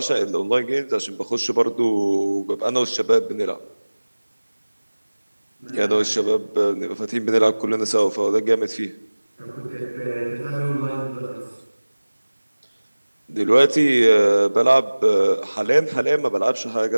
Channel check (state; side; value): inverted; both; correlation -1.00